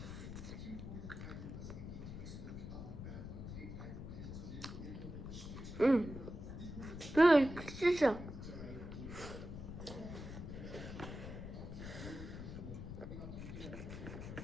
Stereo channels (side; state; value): left; noise; rumble, 8 dB below the sound